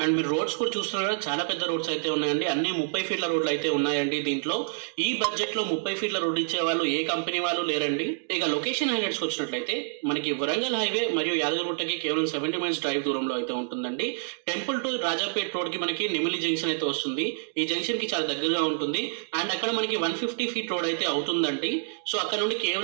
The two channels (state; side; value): silent; left; digital silence